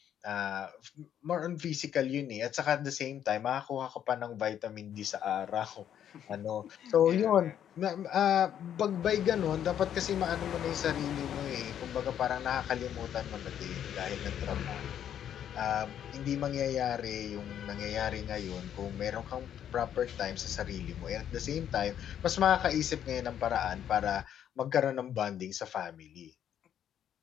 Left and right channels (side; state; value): right; quieter; 9.8 dB